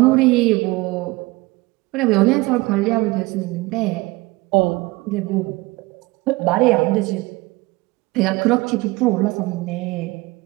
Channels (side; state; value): left; quieter; 22.2 dB